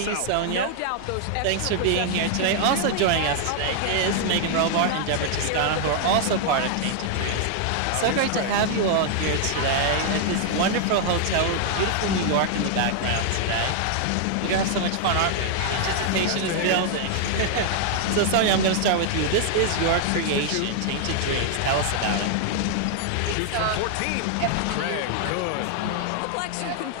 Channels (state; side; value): different; both; correlation 0.00